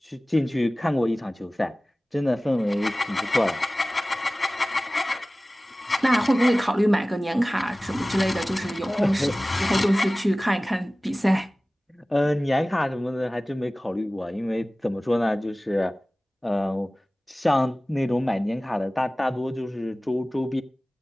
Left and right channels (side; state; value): both; normal; correlation 0.98